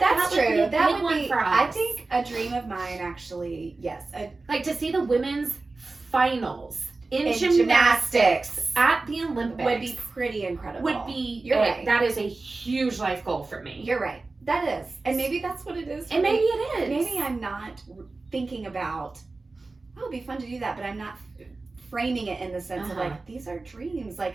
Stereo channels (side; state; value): left; quieter; 3.5 dB